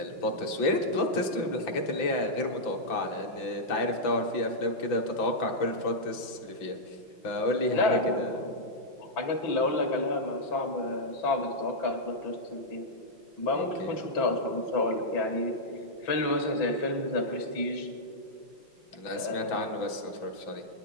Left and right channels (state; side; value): late; right; 5.9 ms